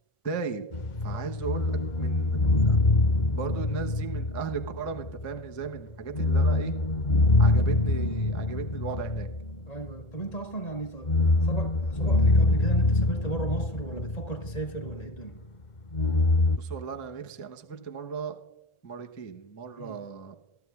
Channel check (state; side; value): late; right; 1.4 ms